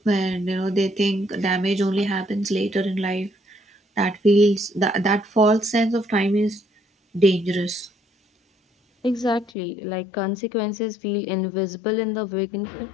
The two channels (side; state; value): right; drops out; at 9.5 s